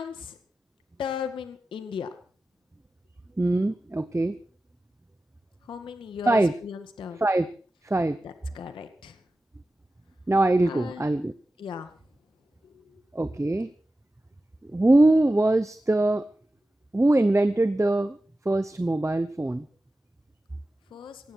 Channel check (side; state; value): both; normal; correlation 0.94